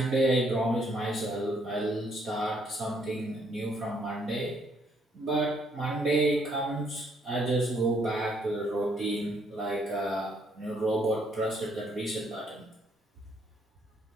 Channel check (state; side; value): normal; both; correlation 0.69